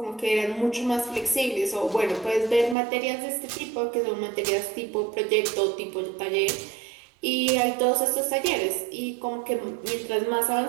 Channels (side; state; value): left; drops out; at 2.8 s